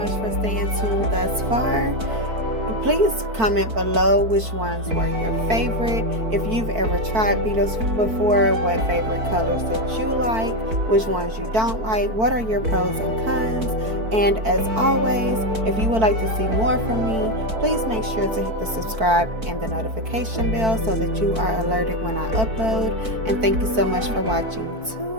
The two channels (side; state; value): left; late; 4.5 ms